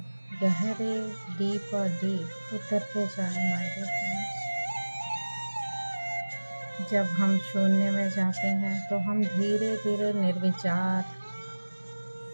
गहरे डीप और डीप उतरते जाए माय डियर फ्रेंड्स। जब हम शून्य में जाते हैं तो हम धीरे धीरे निर्विचार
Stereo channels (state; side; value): inverted; both; correlation -1.00